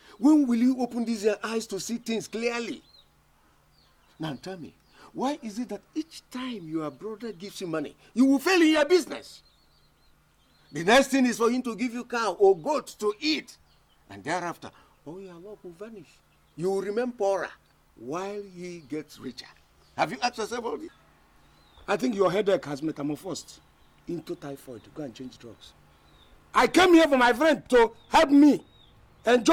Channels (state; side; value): identical; both; correlation 1.00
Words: When will you open these your eyes to see things clearly? Now tell me, why is it that each time your brother gives you money, you will fail in your business? The next thing is for him to give you cow or goat to eat. And thereafter, all your luck will vanish. You will remain poorer while he gets richer. Have you asked yourself all this? I think your headache has metamorphosed into typhoid. Go and change drugs. I came here for my friend to help me,